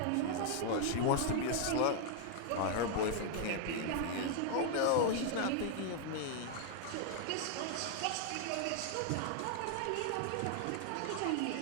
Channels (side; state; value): both; different; correlation 0.00